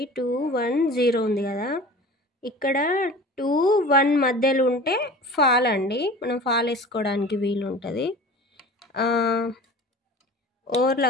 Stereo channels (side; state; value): both; normal; correlation 0.40